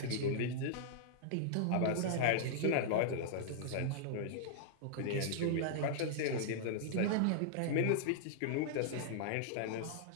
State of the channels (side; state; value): both; different; correlation -0.02